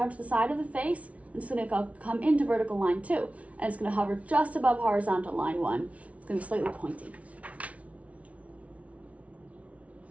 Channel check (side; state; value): left; late; 0.065 ms